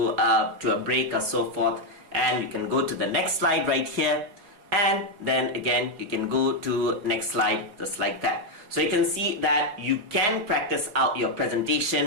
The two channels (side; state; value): left; late; 4.8 ms